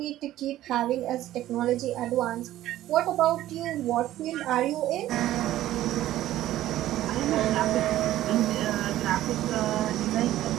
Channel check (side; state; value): left; quieter; 14.0 dB